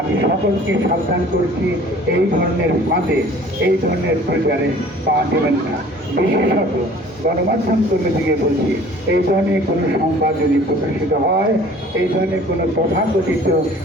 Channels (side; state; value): both; normal; correlation 0.50